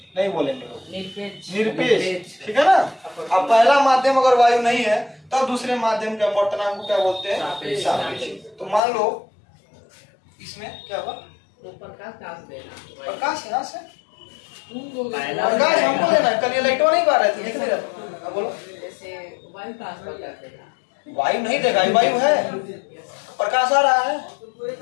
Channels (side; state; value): right; drops out; at 8.8 s